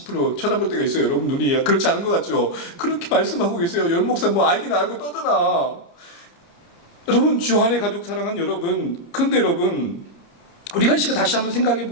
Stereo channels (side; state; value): right; late; 29 ms